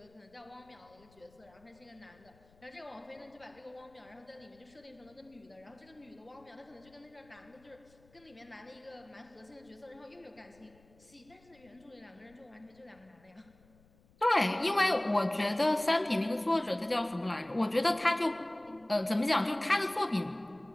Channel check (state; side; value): noise; left; rumble, 29 dB below the sound